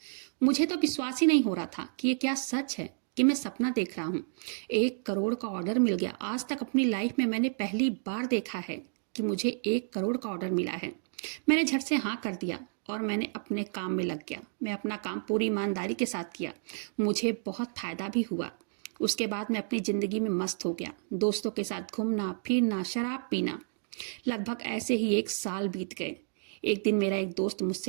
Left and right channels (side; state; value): left; silent; digital silence